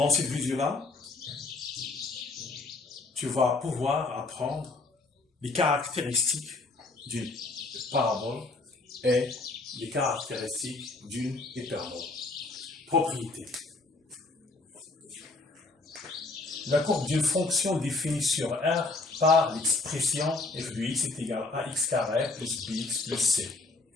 cette vidéo-là, tu vas pouvoir apprendre les caractéristiques d'une parabole et les caractéristiques d'une hyperbole. Propriété. La courbe d'une fonction définie sur R par l'expression f de x est égal à x carré plus bx plus c,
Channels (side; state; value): right; quieter; 3.4 dB